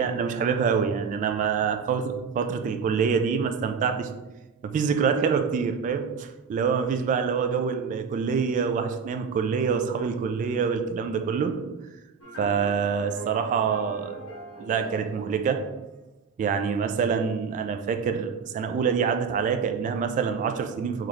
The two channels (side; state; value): left; quieter; 5.9 dB